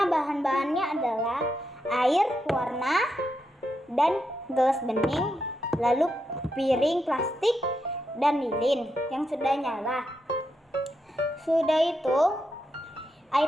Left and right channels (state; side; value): normal; both; correlation 0.84